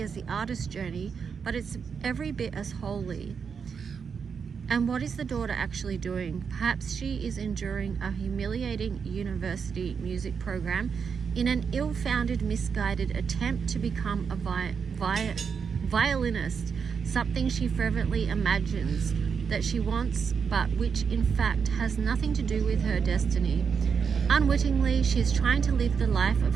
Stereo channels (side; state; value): left; quieter; 6.3 dB